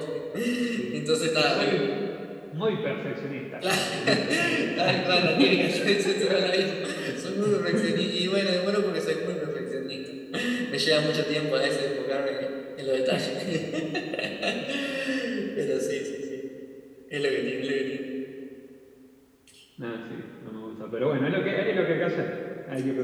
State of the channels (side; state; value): both; identical; correlation 1.00